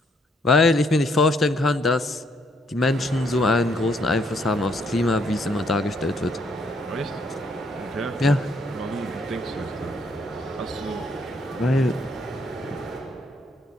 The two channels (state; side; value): normal; both; correlation 0.69